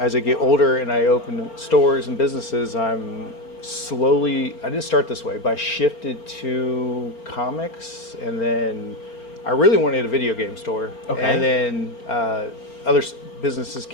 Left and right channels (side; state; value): right; late; 4.4 ms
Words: I get older and I open stores and businesses, I'm slowly. I didn't start this way, but I shifted to comics, and then I really wanted a video game store. Okay. And then other businesses